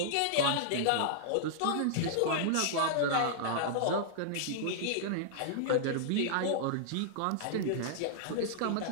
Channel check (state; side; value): different; both; correlation -0.01